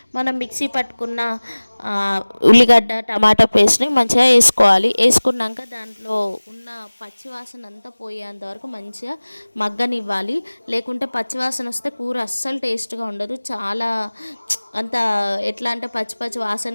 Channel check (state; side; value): inverted; both; correlation -1.00